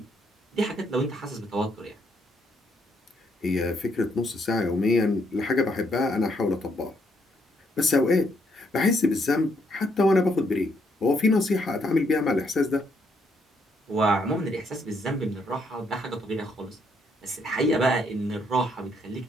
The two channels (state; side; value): normal; both; correlation 0.73